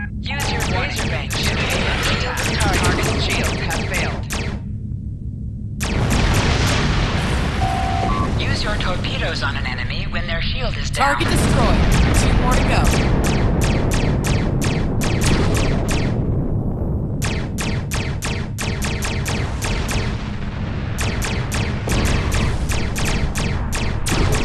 Use your laser range to attack. Target shields have failed. Use your torpedoes on an enemy when their shield is down. Target destroyed. 2 more to go.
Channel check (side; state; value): both; identical; correlation 1.00